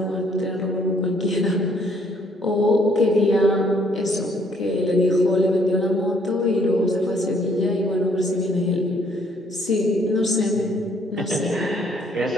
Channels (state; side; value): normal; both; correlation 0.65